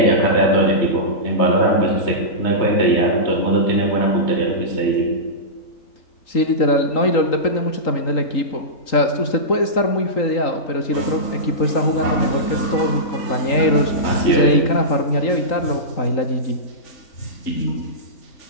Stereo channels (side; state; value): right; late; 3.8 ms